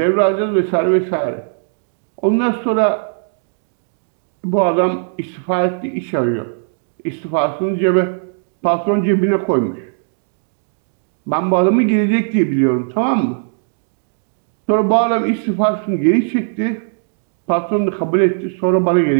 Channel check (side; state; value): left; silent; digital silence